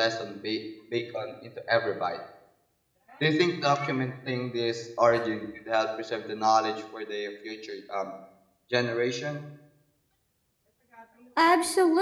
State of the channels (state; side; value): identical; both; correlation 1.00